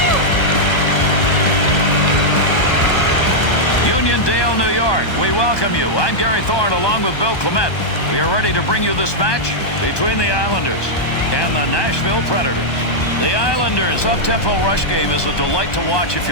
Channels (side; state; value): right; late; 1.2 ms